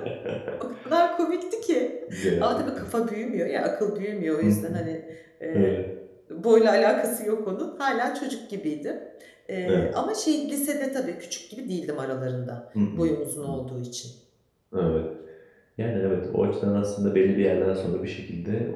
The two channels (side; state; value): both; identical; correlation 1.00